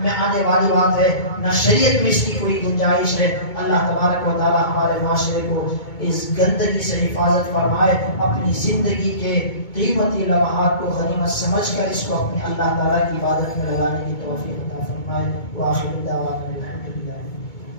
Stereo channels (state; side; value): late; right; 2.2 ms